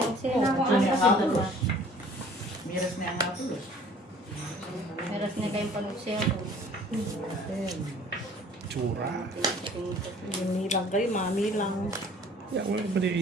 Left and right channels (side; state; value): both; normal; correlation 0.52